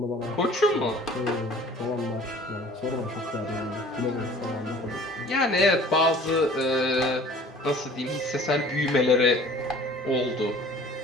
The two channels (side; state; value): both; normal; correlation 0.49